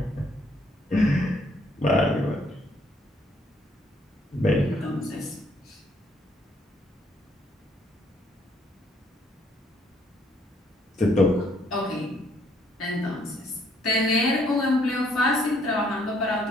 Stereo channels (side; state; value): both; normal; correlation 0.67